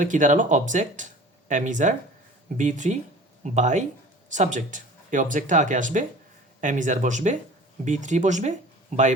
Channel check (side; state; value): both; normal; correlation 0.43